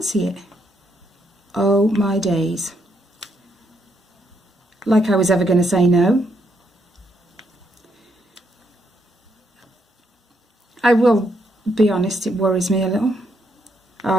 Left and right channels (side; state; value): both; normal; correlation 0.76